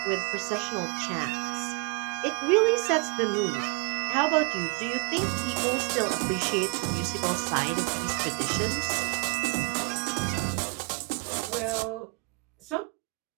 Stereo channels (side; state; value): left; quieter; 28.4 dB